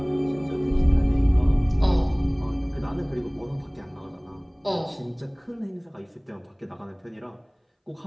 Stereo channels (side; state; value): both; identical; correlation 1.00